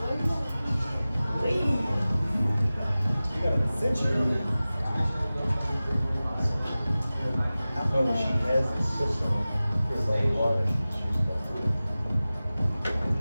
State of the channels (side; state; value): both; inverted; correlation -0.97